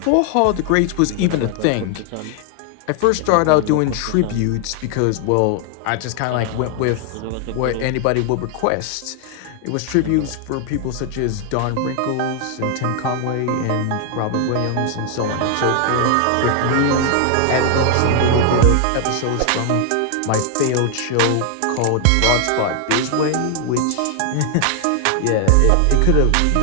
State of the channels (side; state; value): both; different; correlation 0.00